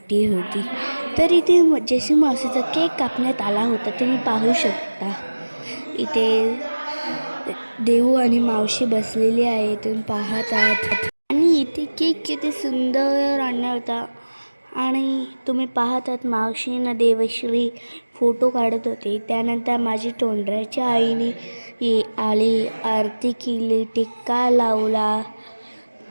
होती. तर इथे जशी मावशीचा केक कापण्यात आला होता. तुम्ही पाहू शकता इथे देऊ आणि मावशी बसलेली आहे, तुम्ही पाहत आहात. आणि इथे केक किती सुंदर आणला होता आणि तुम्ही पाहत आहात मावशीनं देवश्री फोटो काढत होते. त्यानंतर माझी तोंडऱ्याच्या आईने आली, आरती केली, टिक्का लावला,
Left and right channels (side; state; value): both; inverted; correlation -1.00